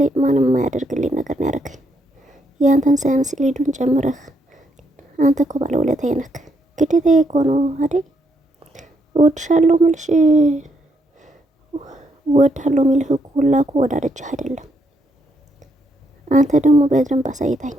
ማንም የማያደርግልኝ ነገር ነው ያደረገኝ። የአንተን ሳያንስ ሊዱን ጨምረህ አንተ እኮ ባለውለታዬ ነህ። ግዴታዬ እኮ ነው አይደል? እወድሻለሁ ምልሽ እወድሃለሁ የሚልህ እኮ ሁላ እኮ ወዳደችህ አይደለም። አንተ ደግሞ በደንብ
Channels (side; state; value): both; normal; correlation 0.76